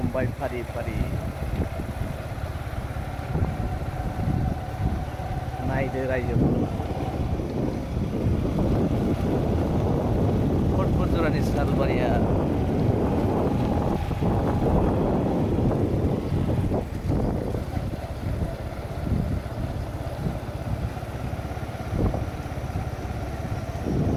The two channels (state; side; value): identical; both; correlation 1.00